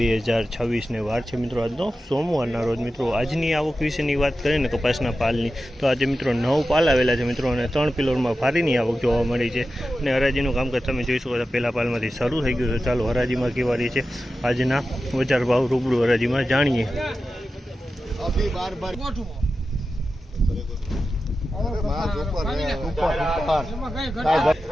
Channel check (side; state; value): both; normal; correlation 0.93